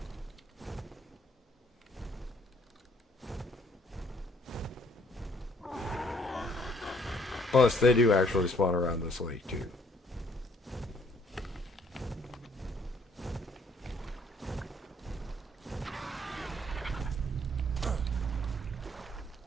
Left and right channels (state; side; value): normal; both; correlation 0.63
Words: Plus, they do actually spawn around this lake too.